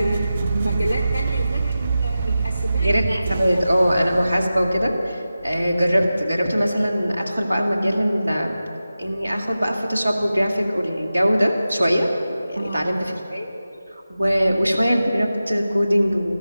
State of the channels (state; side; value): inverted; both; correlation -0.93